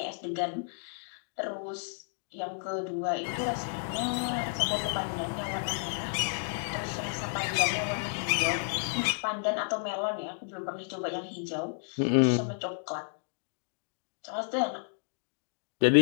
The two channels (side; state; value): right; silent; digital silence